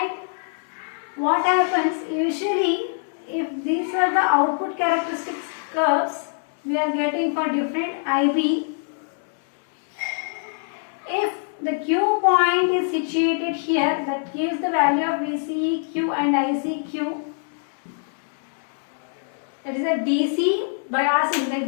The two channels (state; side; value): silent; right; digital silence